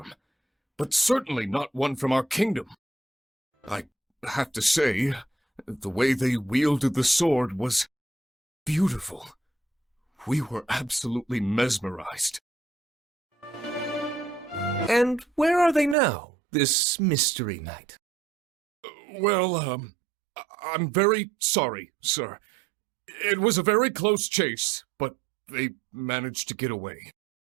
but certainly not one from our kingdom. I have to say, the way they wielded the sword was beautiful. We were absolutely mesmerized. And where are they now, this mystery knight? Well, I'm very sorry, sir. It was a very close chase, but they managed to get away.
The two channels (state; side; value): drops out; left; at 16.0 s